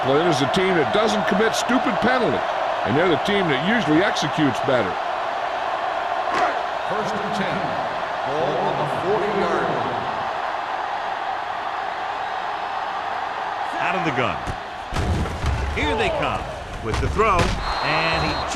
is the team that doesn't commit stupid penalties. And they're the team that usually executes better. First and 10. Ball on the 40-yard line. Out of the gun. Here they come with the throw, and he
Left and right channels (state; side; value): identical; both; correlation 1.00